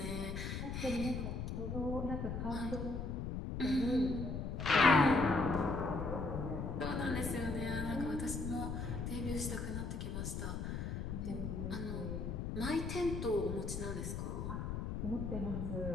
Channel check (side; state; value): left; noise; rumble, 3 dB below the sound